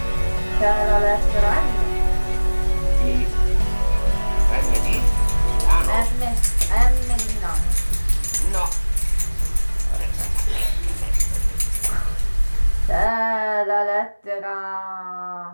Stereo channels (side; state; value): both; inverted; correlation -1.00